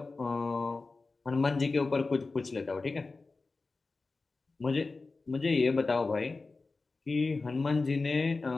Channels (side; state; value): right; quieter; 3.8 dB